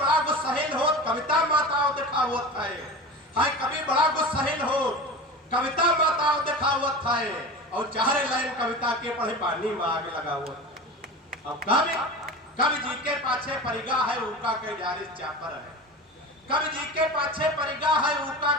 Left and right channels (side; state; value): both; normal; correlation 0.31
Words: गुस्साहिल हो, कविता माताओं दिखावत है। कभी बड़ा गुस्साहिल हो, कविता माताओं दिखावत है। और 4 लाइन कविता के पढ़े पानी में आग लगा हुआ। अब कवि जी के पाछे परिगा है, उनका कई जारिस चापर है। कवि जी के पाछे परिगा है, उनका